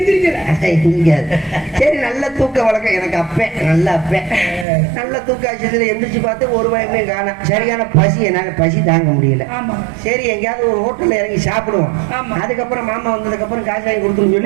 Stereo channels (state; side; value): drops out; left; at 4.7 s